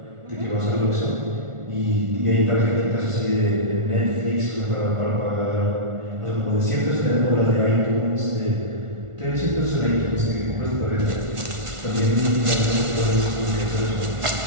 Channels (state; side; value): late; left; 1.4 ms